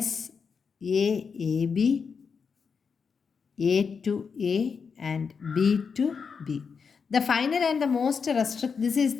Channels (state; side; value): quieter; right; 5.8 dB